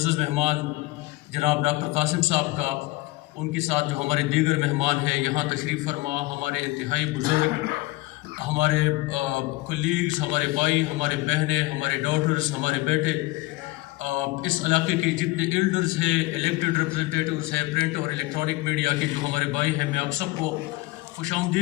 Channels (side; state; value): right; quieter; 20.5 dB